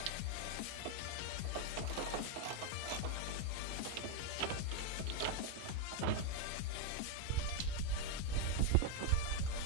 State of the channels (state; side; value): different; both; correlation 0.01